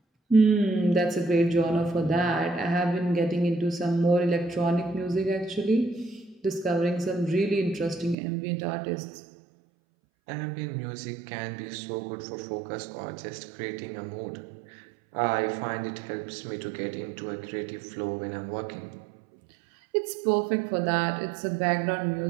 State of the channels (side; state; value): left; drops out; at 8.2 s